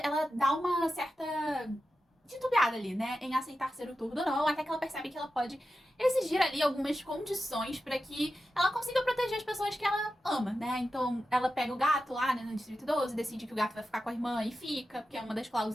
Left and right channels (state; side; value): normal; both; correlation 0.91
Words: dá uma certa titubeada ali, né, em aceitar ser o Turdo ou não, até que ela percebe que ela pode exigir ali algumas condições pra que ela consiga proteger as pessoas que ela ama, né. Então, ela pega o gato lá, né, no Distrito 12, decide que o gato vai ficar com a irmã e fica, porque é uma das